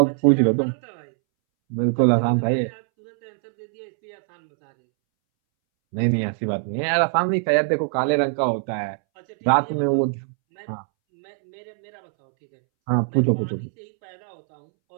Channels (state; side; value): silent; left; 64 dB below the other